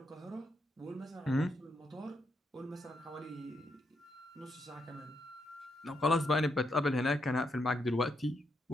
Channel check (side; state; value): both; normal; correlation 0.80